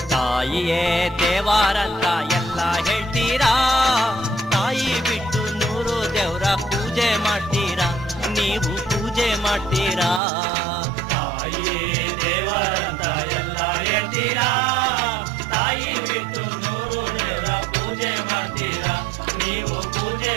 ತಾಯಿಯೇ ದೇವಾರಂತ ಎಲ್ಲ ಹೇಳ್ತೀರಾ, ತಾಯಿ ಬಿಟ್ಟು 100 ದೇವರ ಪೂಜೆ ಮಾಡ್ತೀರಾ, ನೀವು ಪೂಜೆ ಮಾಡ್ತೀರಾ. ತಾಯಿಯೇ ದೇವರಂತ ಎಲ್ಲ ಹೇಳ್ತೀರಾ, ತಾಯಿ ಬಿಟ್ಟು 100 ದೇವರ ಪೂಜೆ ಮಾಡ್ತೀರಾ, ನೀವು ಪೂಜೆ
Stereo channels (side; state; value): left; drops out; at 10.2 s